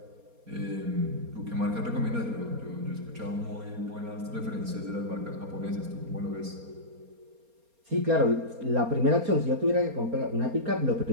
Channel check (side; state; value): left; late; 4.3 ms